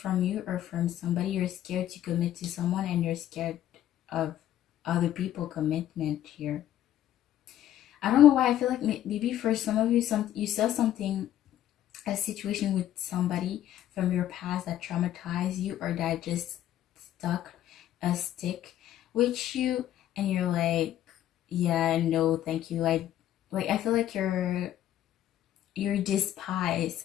you or from somebody, you're scared to commit to someone and you're scared of other people commitment here. I don't know why. I feel like maybe for some of you, you saw something, a situation with somebody from your past that traumatized you or that just stuck a stick with you, and you're like, yeah, no, thank you. I feel like you're despise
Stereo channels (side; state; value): right; quieter; 12.1 dB